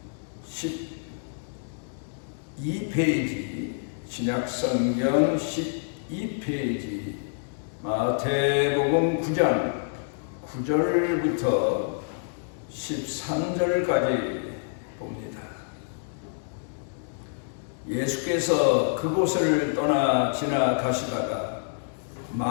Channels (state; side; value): silent; right; digital silence